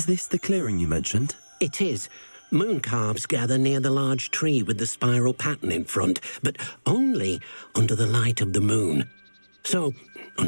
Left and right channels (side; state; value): both; inverted; correlation -1.00